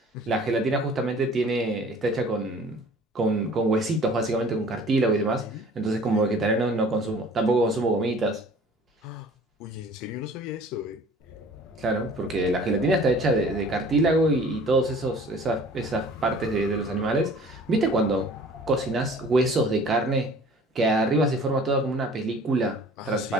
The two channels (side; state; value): both; normal; correlation 0.49